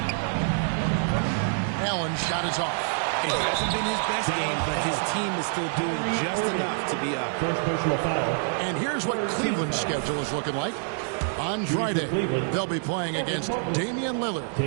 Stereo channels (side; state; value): left; silent; 60 dB below the other